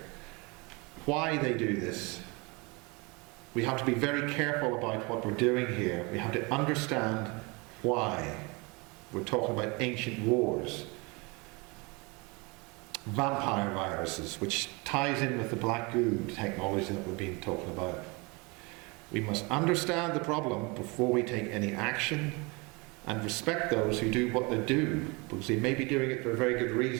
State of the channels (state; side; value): quieter; left; 27.9 dB